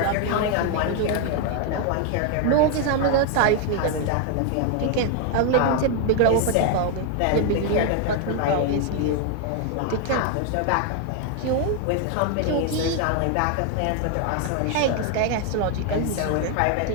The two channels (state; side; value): different; both; correlation 0.00